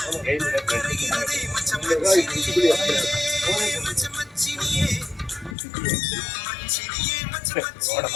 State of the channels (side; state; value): right; drops out; at 5.6 s